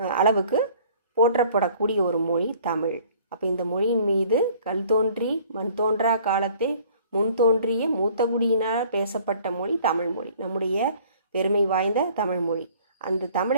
அளவுக்கு போற்றப்படக்கூடிய ஒரு மொழி தமிழ். அப்போ இந்த மொழியின் மீது கல் தோன்றி மண் தோன்றா காலத்தை முன் தோன்றிய மூத்தகுடியினால் பேசப்பட்ட மொழி தமிழ் மொழி, நம்முடைய பெருமை வாய்ந்த தமிழ் மொழி. அந்த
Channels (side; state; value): both; inverted; correlation -0.54